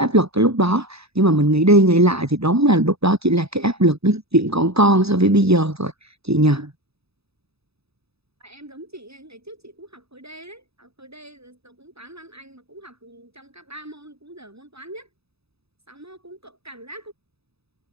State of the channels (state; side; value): late; left; 0.78 ms